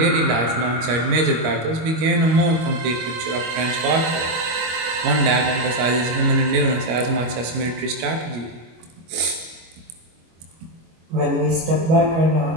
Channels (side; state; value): left; late; 25 ms